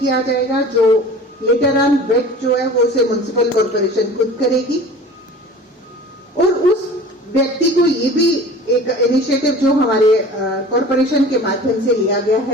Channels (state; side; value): normal; both; correlation 0.41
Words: जाएगा, जो लेटर ऑन वेट जो है वो उसे म्युनिसिपल कॉर्पोरेशन खुद करेगी। और उस व्यक्ति को ये भी एक इनिशिएटिव जो हमारे कॉर्पोरेशन के माध्यम से लिया गया